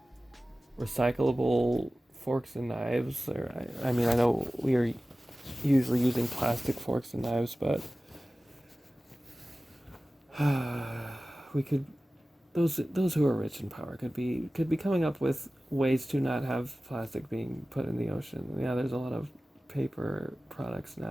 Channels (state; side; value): normal; both; correlation 0.96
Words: recyclable forks and knives. Or I mean, I know we are usually using plastic forks and knives, but we could, those who are rich in power could be coming up with ways to not have plastic being put in the ocean. Yeah, there's a lot of paper products